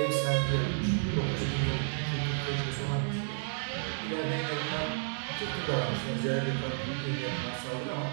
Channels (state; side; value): silent; left; 57 dB below the other